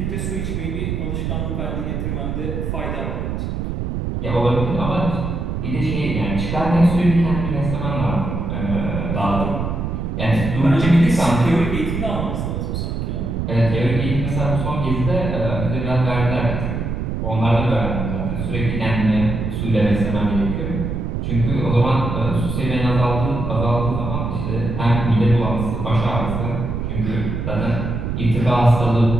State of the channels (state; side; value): noise; right; rumble, 3 dB below the sound